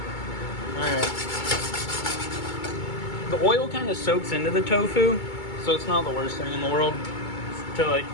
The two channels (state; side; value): late; right; 2.2 ms